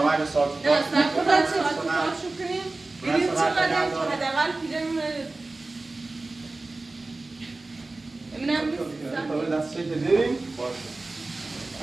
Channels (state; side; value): quieter; left; 3.2 dB